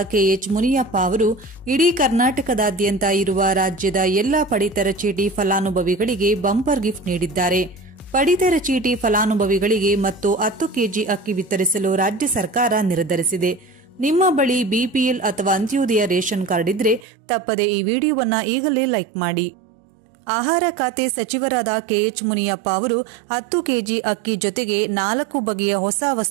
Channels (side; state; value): left; drops out; at 17.1 s